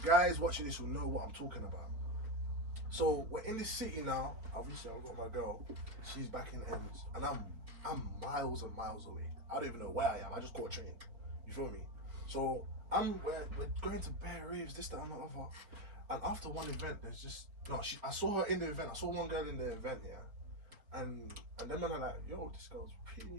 guys watching this will know what I'm talking about. So we're in this city now. Obviously, I've got my girl. She's back in Ends, and I'm miles and miles away. I don't even know where I am. I just caught a train. You feel me? So we're going to bear raves, this, that, and the other. And after one event, there's just I saw her in the event. I saw one girl in the event, yeah. And then man are like, yo, this girl's pretty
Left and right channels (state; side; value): late; left; 4.4 ms